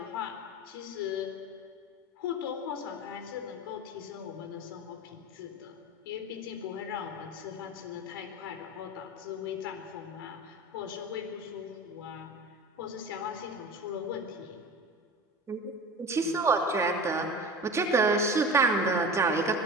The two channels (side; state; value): both; normal; correlation 0.33